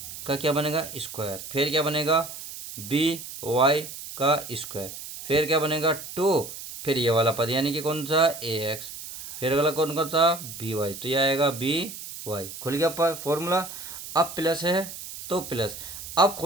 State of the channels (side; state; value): right; noise; hiss, 11 dB below the sound